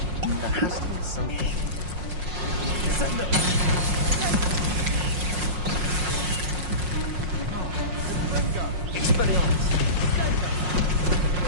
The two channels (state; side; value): late; left; 5.5 ms